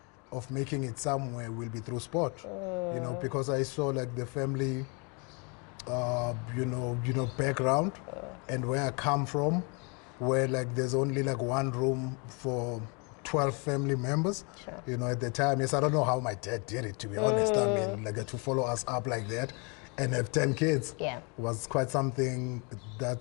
of making it somewhere will be through sport, you know, because I saw like the family, you know, background and where I come from, where like there's only like one room for 12 family members, you know, at the time. Yes, I don't know how my dad did it, to be honest. I mean, like to follow us up like that and have 10 kids was quite something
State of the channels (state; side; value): quieter; right; 33.1 dB